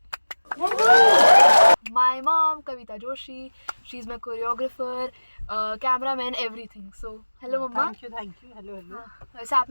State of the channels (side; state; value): both; inverted; correlation -1.00